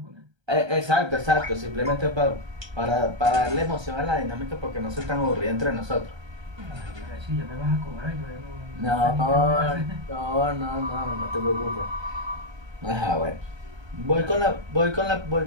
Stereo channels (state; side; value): late; left; 1.3 ms